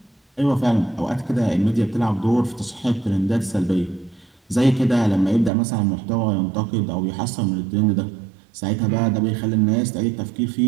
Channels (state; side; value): drops out; left; at 5.5 s